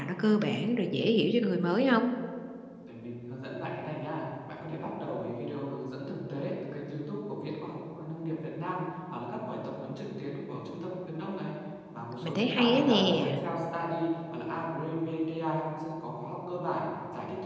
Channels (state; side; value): identical; both; correlation 1.00